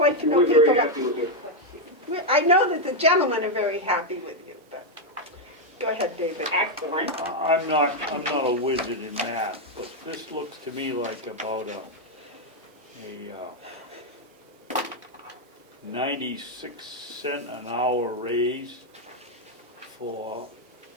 to know We're people. very happy with you. I know that the gentlemen are very happy with you, but go ahead, David. Excellent. I'm not a wizard in math, but this looks to me like about a 96 cent an hour raise for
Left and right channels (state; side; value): normal; both; correlation 0.01